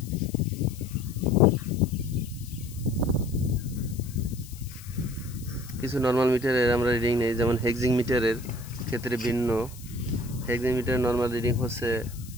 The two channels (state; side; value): noise; left; hiss, 18 dB below the sound